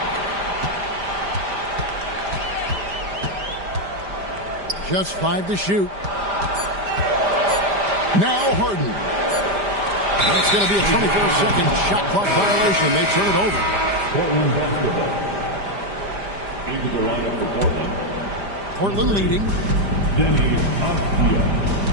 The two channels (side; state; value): left; late; 5.0 ms